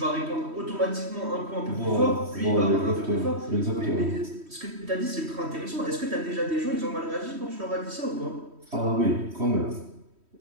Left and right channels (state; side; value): late; left; 3.1 ms